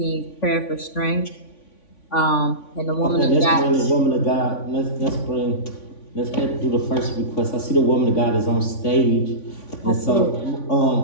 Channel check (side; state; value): right; late; 3.5 ms